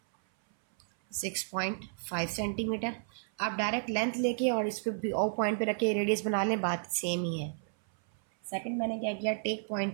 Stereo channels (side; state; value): left; silent; 56 dB below the other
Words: 6.5 centimetre. आप डायरेक्ट लेंथ लेके और इस पे ओ पॉइंट पे रखे रेडियस बना लें, बात सेम ही है। सेकंड मैंने क्या किया, take